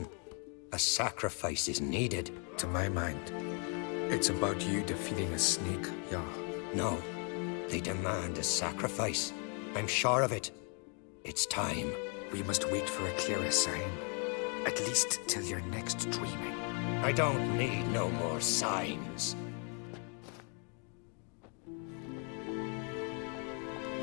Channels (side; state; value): right; quieter; 38.4 dB